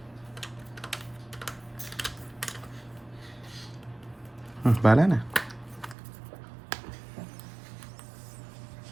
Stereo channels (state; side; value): drops out; left; at 6.0 s